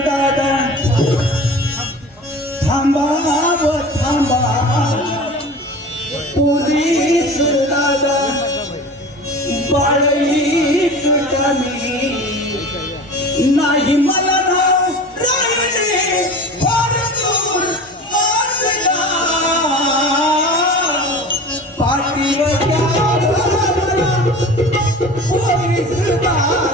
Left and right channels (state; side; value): normal; both; correlation 0.36